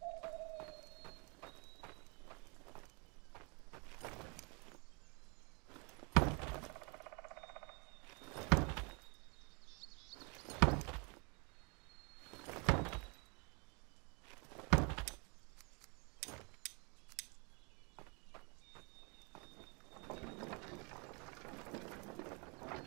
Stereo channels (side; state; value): left; quieter; 32.9 dB